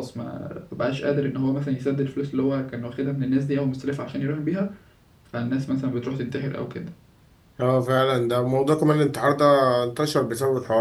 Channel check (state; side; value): identical; both; correlation 1.00